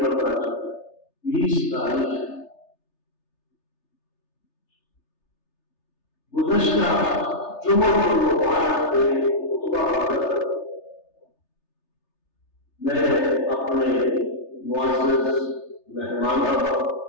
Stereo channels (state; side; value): late; right; 3.3 ms